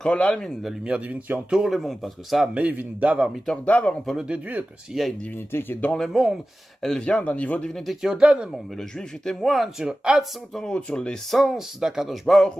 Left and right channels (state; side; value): normal; both; correlation 0.95